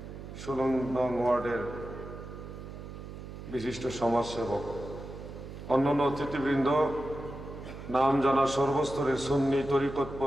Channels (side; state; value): right; noise; hum, 11 dB below the sound